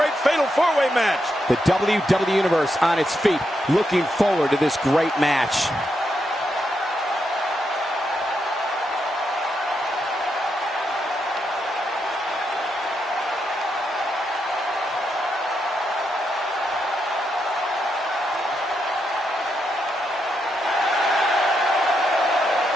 fatal four-way match? The WWE Universe on its feet, looking forward to this great match.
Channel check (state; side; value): normal; both; correlation 0.82